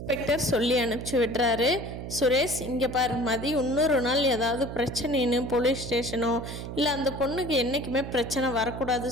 இன்ஸ்பெக்டர் சொல்லி அனுப்பிச்சி விடுறாரு. சுரேஷ் இங்கே பாரு மதி இன்னொரு நாள் ஏதாவது பிரச்சனைன்னு போலீஸ் ஸ்டேஷனோ இல்லை அந்த பொண்ணுக்கு என்றைக்குமே பிரச்சனை வரக்கூடாது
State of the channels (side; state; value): right; noise; hum, 8 dB below the sound